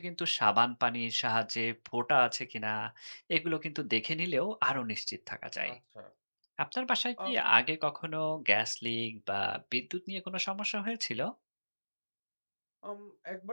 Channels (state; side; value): inverted; both; correlation -1.00